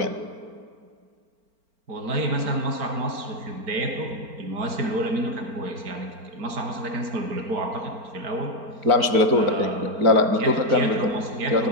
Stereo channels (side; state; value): left; late; 4.4 ms